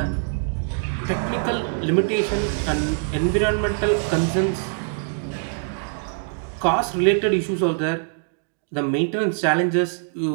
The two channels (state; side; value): silent; left; digital silence